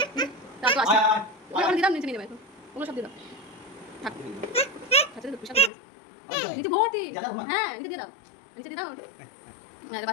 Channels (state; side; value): drops out; right; at 5.7 s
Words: তা তো আসছে ওখানে দিলাম নিচে নিয়ে যাবে এখন ওগুলো সব দিয়ে দাও থাক আচ্ছা তো পেশাব নিচে ভর্তি হ্যাঁ নিচে দিয়ে দাও হ্যাঁ